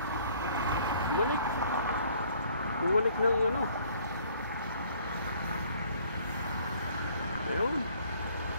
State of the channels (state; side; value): inverted; both; correlation -0.59